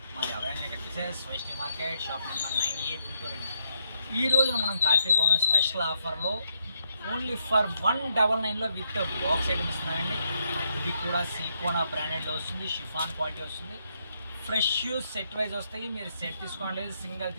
మాది అవైలబుల్ వచ్చేసి Vaishnavi market shop number 9A Guntur అండి. ఈ రోజున మనం కార్తీక పౌర్ణమి స్పెషల్ ఆఫర్లో ఓన్లీ ఫర్ 199లో విత్ బాక్స్ ఐటమ్ ఇస్తున్నామండి. ఇది కూడా సిలికోనా బ్రాండెడ్లో వస్తుంది, షిఫాన్ క్వాలిటీ వస్తుంది, ఫ్రెష్ సెట్ వైజ్ వస్తాయి. మీరు సెట్ తీసుకోండి, సింగిల్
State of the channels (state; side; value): inverted; both; correlation -0.77